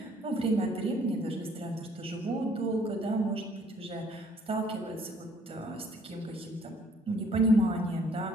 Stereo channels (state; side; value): normal; both; correlation 0.61